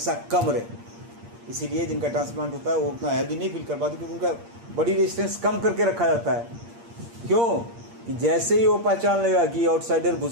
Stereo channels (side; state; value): left; late; 8.6 ms